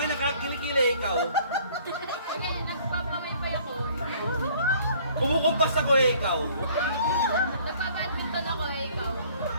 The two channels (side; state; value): both; inverted; correlation -0.56